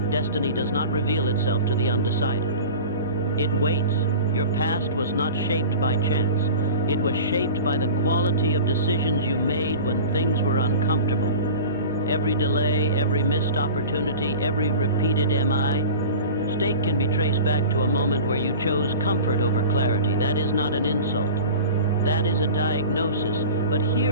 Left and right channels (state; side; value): inverted; both; correlation -0.35